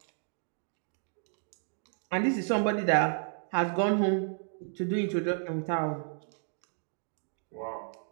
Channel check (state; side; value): silent; left; 56 dB below the other